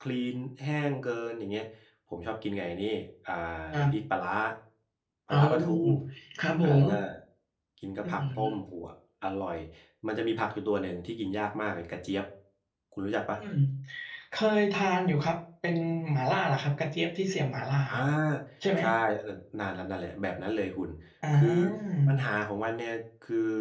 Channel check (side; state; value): both; identical; correlation 1.00